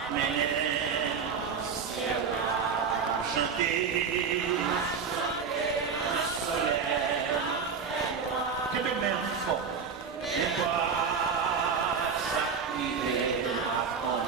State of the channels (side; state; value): left; quieter; 5.9 dB